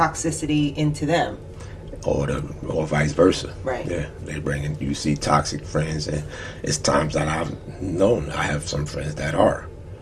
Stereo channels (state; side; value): identical; both; correlation 1.00